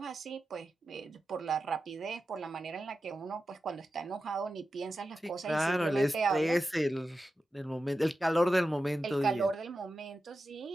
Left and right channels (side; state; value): both; normal; correlation 0.92